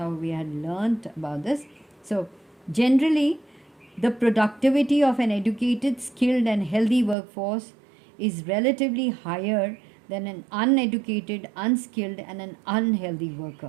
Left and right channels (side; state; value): left; drops out; at 7.2 s